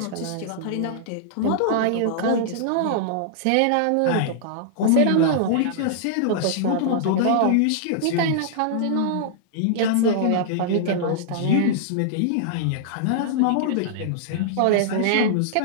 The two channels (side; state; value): both; different; correlation -0.02